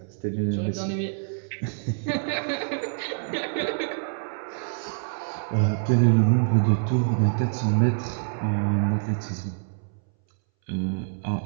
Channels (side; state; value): left; silent; 61 dB below the other